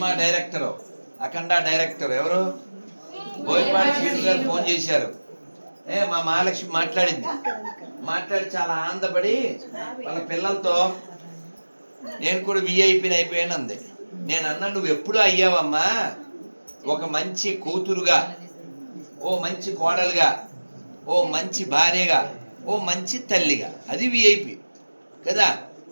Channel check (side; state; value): both; inverted; correlation -1.00